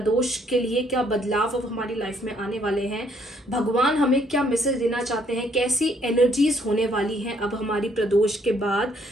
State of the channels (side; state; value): both; normal; correlation 0.67